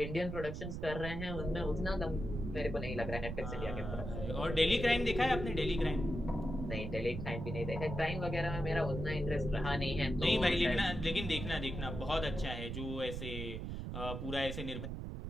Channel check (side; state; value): right; noise; rumble, 6 dB below the sound